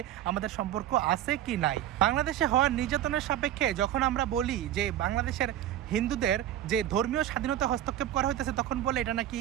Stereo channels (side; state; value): left; quieter; 11.8 dB